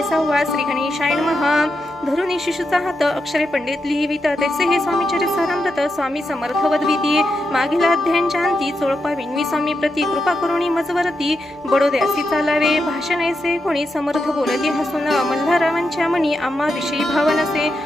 6. श्री गणेशाय नमः. धरुणी शिशुचा हात अक्षरे पंडित लिहिवित. तैसे हे स्वामी चरितामृत स्वामी समर्थ वदविती. मागील अध्यायांच्या अंती चोळपा विनवी स्वामी प्रती. कृपा करुणी मजवरती बडोद्यासी चालावे. भाषण ऐसे कोणी समर्थ बोलती हसून. मल्हाररावांच्या मनी आम्हा विषयी भाव नसे.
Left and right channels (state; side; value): normal; both; correlation 0.85